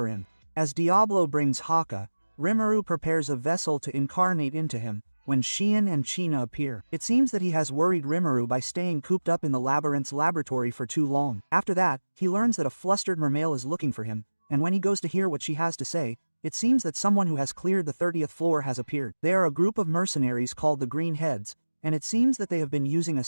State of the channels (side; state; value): both; inverted; correlation -1.00